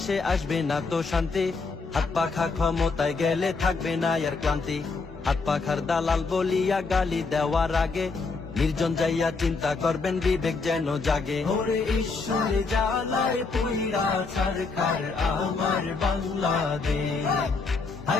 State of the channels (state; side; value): quieter; right; 4.2 dB